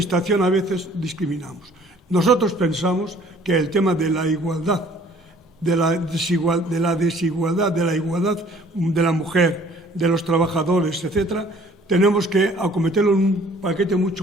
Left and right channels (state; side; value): normal; both; correlation 0.55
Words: a veces discriminamos. Nosotros pensamos que el tema de la igualdad, de la igualdad de la mujer, de los trabajadores, etcétera, tenemos que acometerlo en un paquete